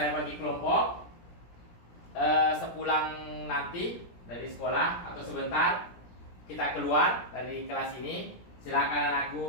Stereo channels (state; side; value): late; right; 17 ms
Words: bagi kelompok, sepulang nanti dari sekolah atau sebentar kita keluar dari kelas ini, silakan